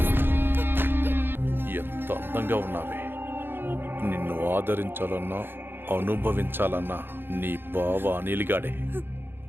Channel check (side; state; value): left; late; 0.10 ms